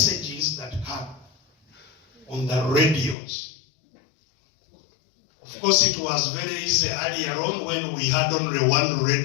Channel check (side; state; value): right; drops out; at 3.2 s